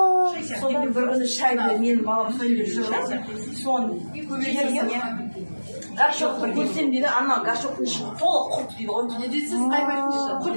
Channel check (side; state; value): both; inverted; correlation -1.00